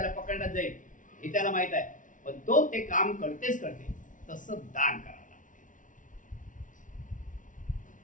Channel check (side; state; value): right; late; 0.38 ms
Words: पकडण्यात जाईल हे त्याला माहित आहे. पण तो ते काम करतेच करते. तसं दान करावं लागते.